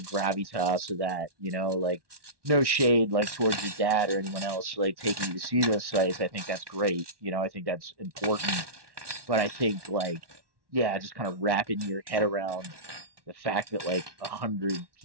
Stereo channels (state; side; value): late; left; 1.2 ms